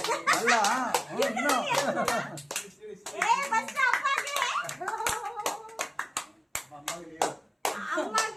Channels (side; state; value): both; identical; correlation 1.00